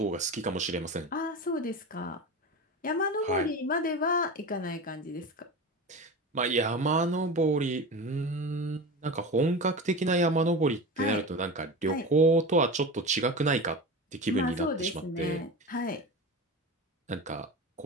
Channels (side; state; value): both; normal; correlation 0.28